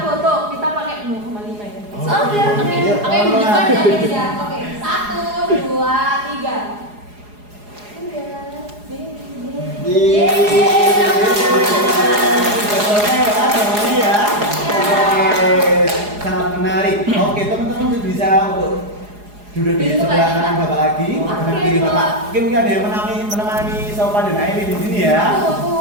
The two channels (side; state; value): left; late; 4.8 ms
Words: foto, kita pakai 0,5 ya. Oke, Iya. oke, bukan ya guys ya. Oke, 1, 2, 3. Udah. Sangat menarik. Oke, teman-teman bisa untuk duduk di sebelah kanan Bapak lagi, sebelah kiri Bapak. Oke, mungkin ada yang menemani Sofa dan Airi di sini ya.